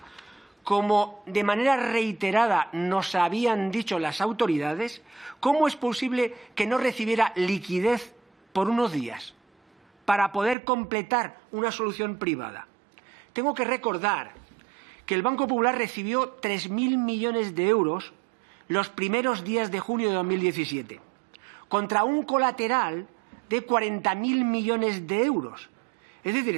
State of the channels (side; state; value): left; drops out; at 10.6 s